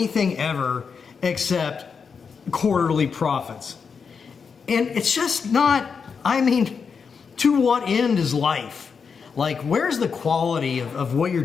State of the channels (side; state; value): right; quieter; 5.9 dB